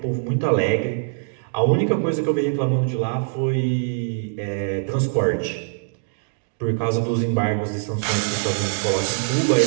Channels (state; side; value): silent; left; digital silence